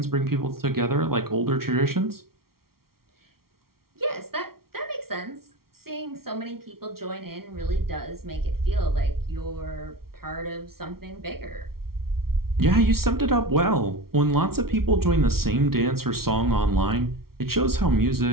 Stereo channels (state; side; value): late; left; 0.94 ms